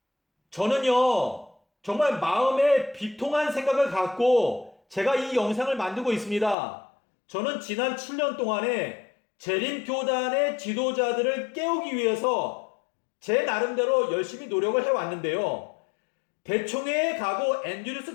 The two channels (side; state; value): right; drops out; at 6.6 s